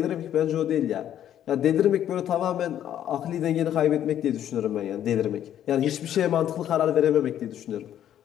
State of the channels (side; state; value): right; quieter; 10.8 dB